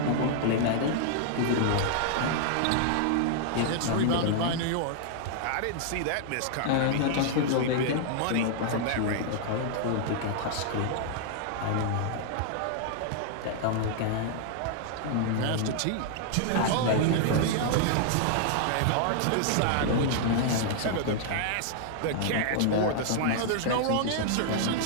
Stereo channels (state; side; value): different; both; correlation -0.01